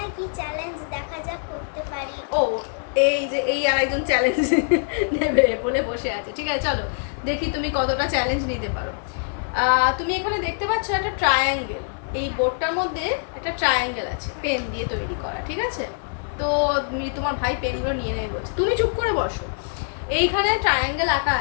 কি চ্যালেঞ্জ দেখা যাক করতে পারি। ও, এই যে এই আরেকজন চ্যালেঞ্জ নেবে বলে বসে আছে। ঠিক আছে, চলো দেখি তুমি কতটা চ্যালেঞ্জ নিতে পারো। তুমি এখানে দেখতে পাচ্ছ একটা ট্রায়াঙ্গেল। এই বোর্ডটার মধ্যে একটা ট্রায়াঙ্গেল আছে, পেন দিয়ে তৈরি করা। ঠিক আছে, তো তোমার ভাই পেনগুলো নিয়ে নেবে বলছে, তুমি চুপ করে বসো। এইখানে ট্রায়াঙ্গেল আঁকা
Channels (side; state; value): right; silent; 62 dB below the other